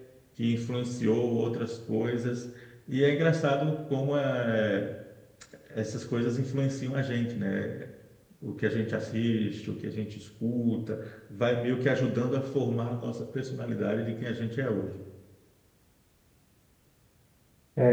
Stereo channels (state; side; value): identical; both; correlation 1.00